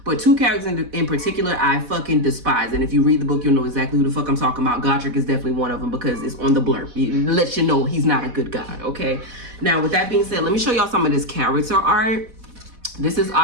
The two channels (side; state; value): left; late; 4.1 ms